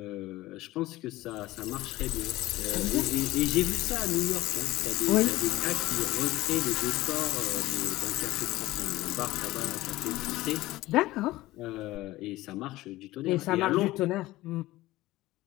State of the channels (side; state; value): right; quieter; 17.6 dB